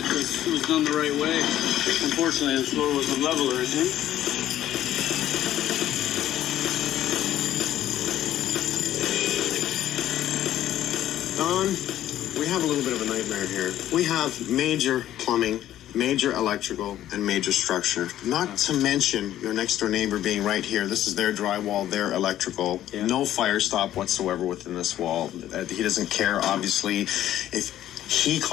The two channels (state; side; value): quieter; right; 12.6 dB